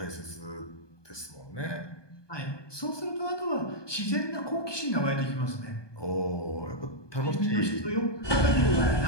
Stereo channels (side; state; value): right; late; 1.2 ms